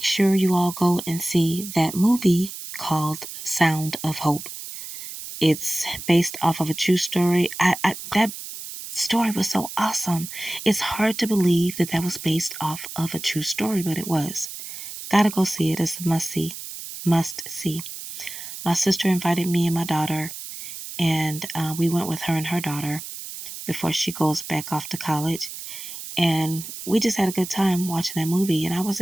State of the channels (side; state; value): right; noise; hiss, 10 dB below the sound